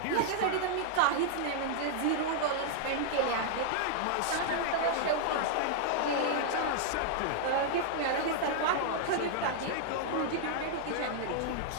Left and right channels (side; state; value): both; different; correlation -0.01